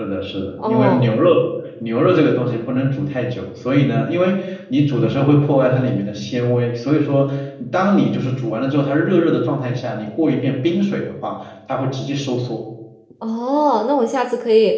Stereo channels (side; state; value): both; identical; correlation 1.00